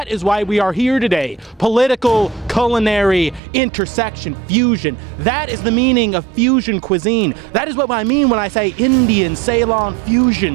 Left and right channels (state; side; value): drops out; left; at 3.4 s